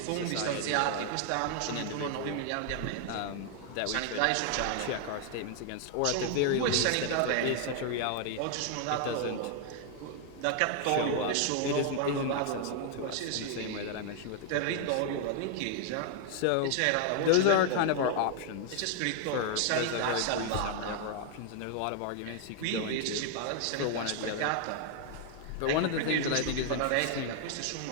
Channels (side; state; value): both; different; correlation 0.00